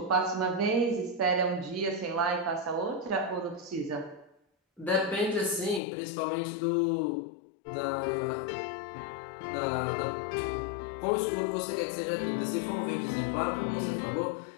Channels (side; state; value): right; drops out; at 5.8 s